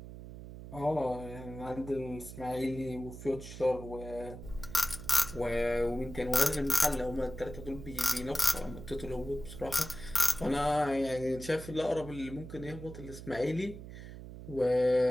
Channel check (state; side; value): noise; right; hum, 12 dB below the sound